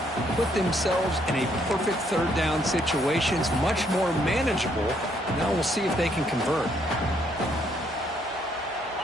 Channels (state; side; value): normal; both; correlation 0.70